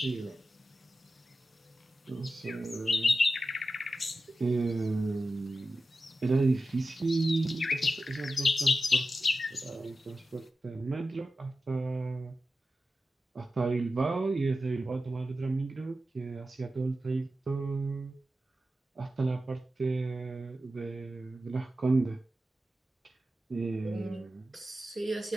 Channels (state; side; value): normal; both; correlation 0.92